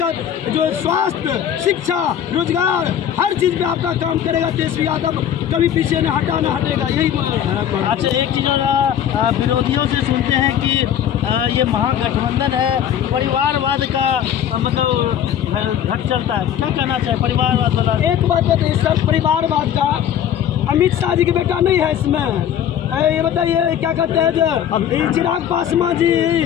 जो स्वास्थ्य, शिक्षा, रोजगार, हर चीज़ पे आपका काम करेगा तेजस्वी यादव, कभी पीछे न हटेगा। यही अच्छा, एक चीज़ विरोधियों से सुनते हैं कि ये महागठबंधन है, परिवारवाद का मतलब घट चलता है, क्या कहना चाहे? परिवारवाद वाला एक बात बताइए सर, परिवारवाद का अमित शाह जी का बेटा नहीं है इसमें। ये बताइए क्या कहते हैं, जो चिराग पासवान जी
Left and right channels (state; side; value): quieter; right; 9.7 dB